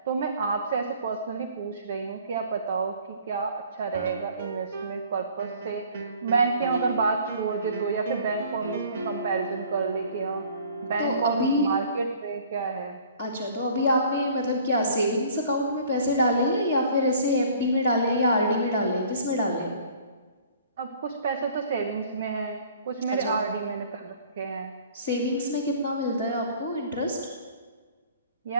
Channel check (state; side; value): inverted; both; correlation -0.52